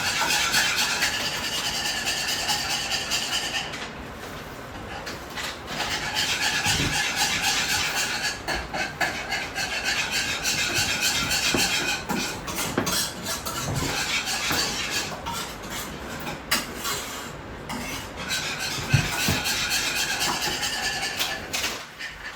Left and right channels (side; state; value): both; identical; correlation 1.00